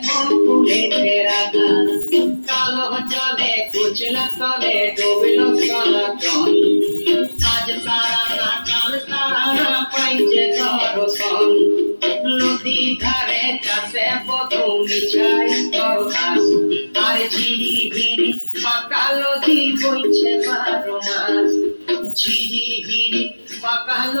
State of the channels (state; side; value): inverted; both; correlation -1.00